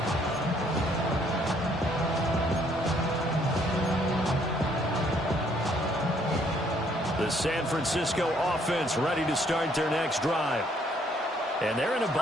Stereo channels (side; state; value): both; normal; correlation 0.66